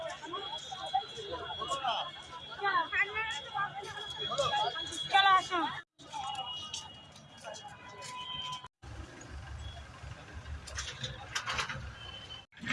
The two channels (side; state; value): both; identical; correlation 1.00